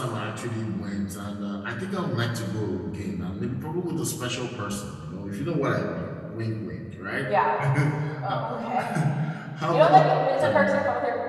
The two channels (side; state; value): both; identical; correlation 1.00